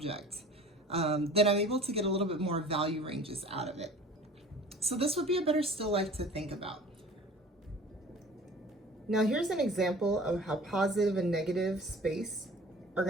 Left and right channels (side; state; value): both; normal; correlation 0.45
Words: then I'm able to get a little bit more value ranges out of it. So this would be a better still life to think about. Now here's an example of how positive and negative space are